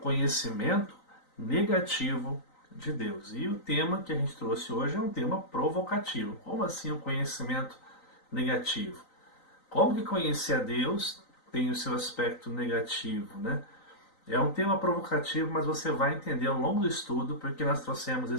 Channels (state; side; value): late; right; 3.9 ms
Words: negativo de Deus. E o tema que a gente trouxe hoje é um tema provocativo. Como assim o conhecimento negativo? Como que conhecer a Deus tem o seu aspecto negativo, né? É um tema provocativo, mas você vai entender ao longo do estudo porque nós trouxemos